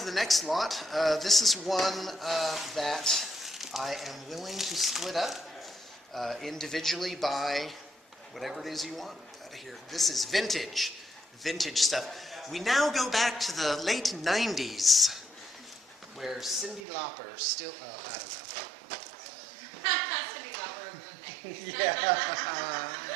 the next lot. This is one that I am willing to split up individually by whatever it is you want out of here. This is vintage stuff. We now go back to the late 90s, where Cyndi Lauper still, I don't Cyndi Lauper was one know. Yeah.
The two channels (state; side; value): drops out; left; at 16.8 s